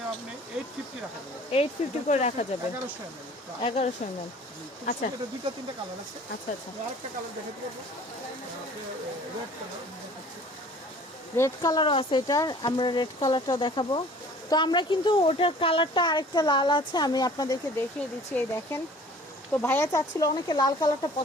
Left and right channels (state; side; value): normal; both; correlation 0.49